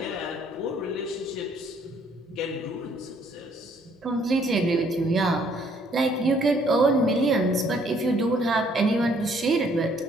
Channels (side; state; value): both; normal; correlation 0.64